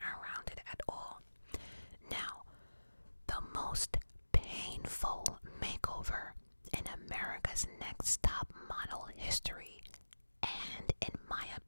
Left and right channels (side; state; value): both; inverted; correlation -1.00